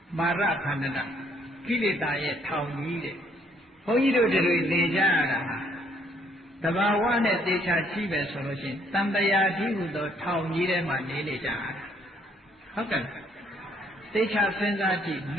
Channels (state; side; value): normal; both; correlation 0.67